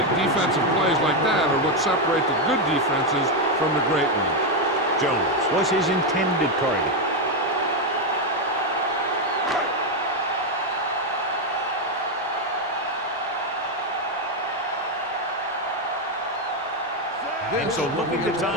defensive plays like that are what separate the good defenses from the great ones. Jones was his intended target. And so looking to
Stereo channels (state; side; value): normal; both; correlation 0.05